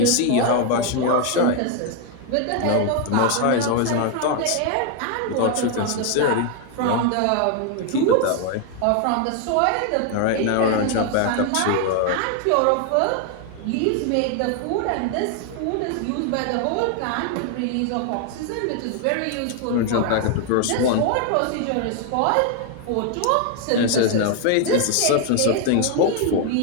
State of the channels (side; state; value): both; different; correlation 0.00